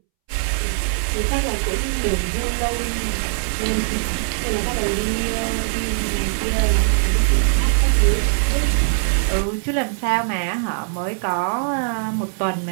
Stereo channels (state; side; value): silent; left; 65 dB below the other